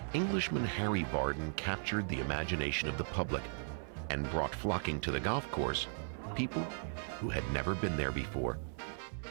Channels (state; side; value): silent; left; 53 dB below the other